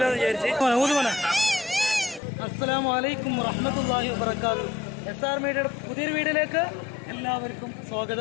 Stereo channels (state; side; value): drops out; right; at 2.2 s